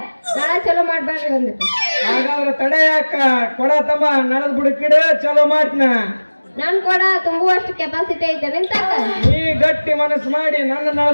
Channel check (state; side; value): inverted; both; correlation -1.00